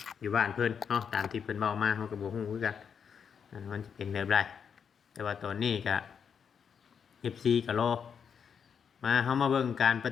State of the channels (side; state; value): right; quieter; 7.0 dB